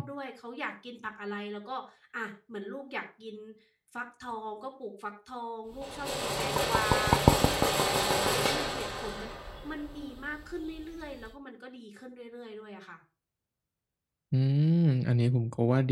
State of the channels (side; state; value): both; identical; correlation 1.00